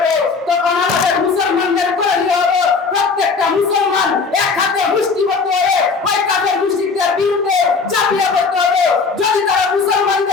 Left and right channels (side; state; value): right; quieter; 4.8 dB